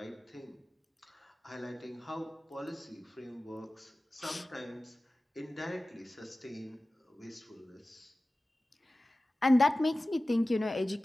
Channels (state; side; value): normal; both; correlation 0.96